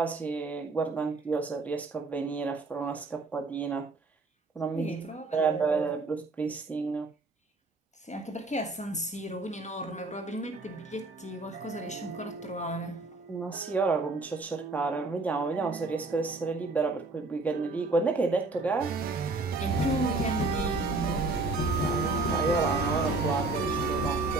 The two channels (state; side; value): quieter; left; 3.4 dB